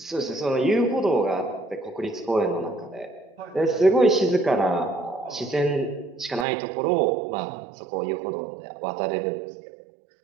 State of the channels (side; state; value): left; drops out; at 6.5 s